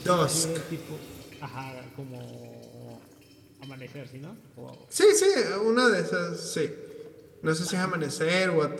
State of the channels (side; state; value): both; identical; correlation 1.00